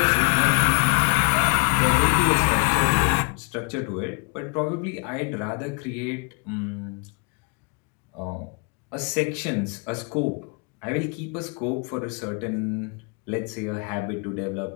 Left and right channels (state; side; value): quieter; right; 34.1 dB